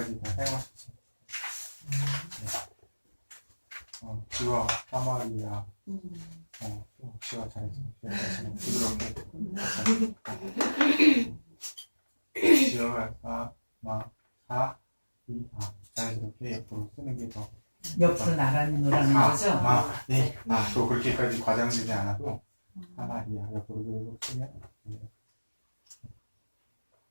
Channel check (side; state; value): both; inverted; correlation -1.00